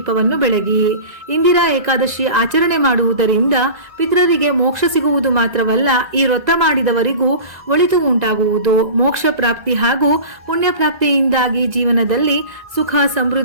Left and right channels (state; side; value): late; left; 2.0 ms